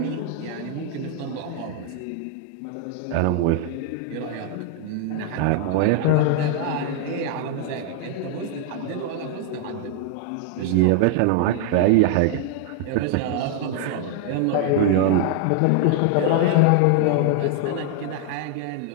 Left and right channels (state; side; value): different; both; correlation 0.00